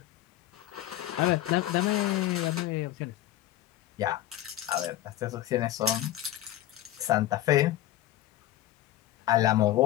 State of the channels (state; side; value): quieter; right; 13.9 dB